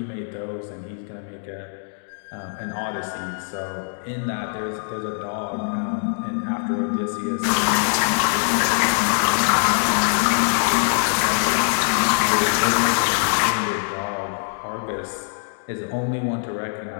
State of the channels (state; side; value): silent; right; digital silence